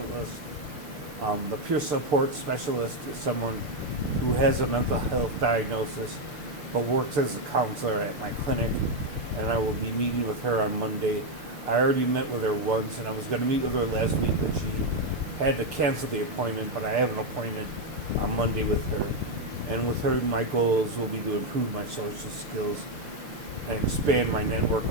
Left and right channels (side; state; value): left; late; 6.6 ms